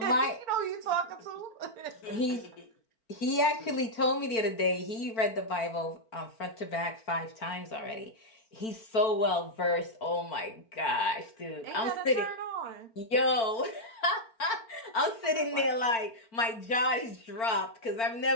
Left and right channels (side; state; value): right; late; 4.4 ms